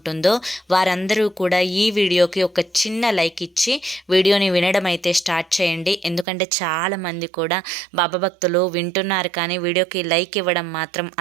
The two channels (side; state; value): left; drops out; at 6.2 s